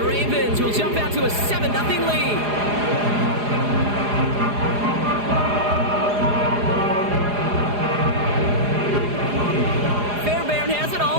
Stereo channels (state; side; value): late; left; 4.9 ms